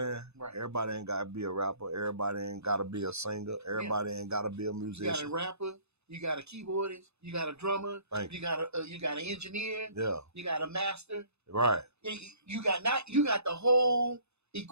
Right. Everybody ain't got to be a rapper. Everybody ain't got to be a singer. Everybody ain't got to be a musician. You got a rapper. You got a keyboardist. You got a drummer. You got an engineer. Yeah. You got a master. Right. You got the whole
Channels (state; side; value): late; left; 0.80 ms